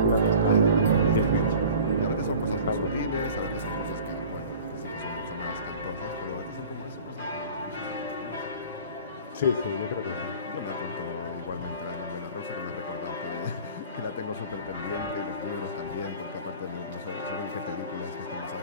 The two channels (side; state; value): both; inverted; correlation -0.43